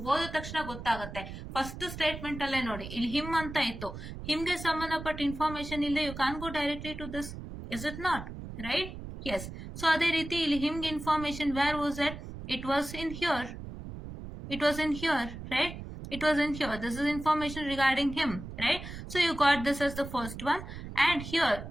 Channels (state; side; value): noise; right; rumble, 10 dB below the sound